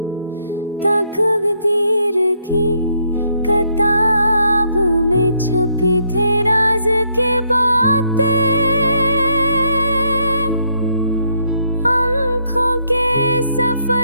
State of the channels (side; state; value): both; inverted; correlation -0.73